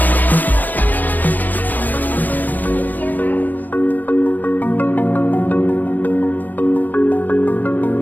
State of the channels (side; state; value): right; late; 0.084 ms